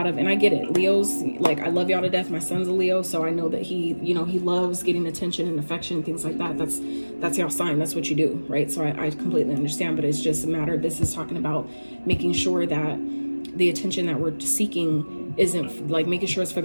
of, and I get it, Leos, like I love y'all to death. My son's a Leo, so I know that he, you know, he loves getting attention and affection, things like that. That's y'all sign. That's what you do, right? So I completely understand, but it's just a matter, this is talking about making sure that the attention that we're seeking isn't like, making sure it's for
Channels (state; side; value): inverted; both; correlation -1.00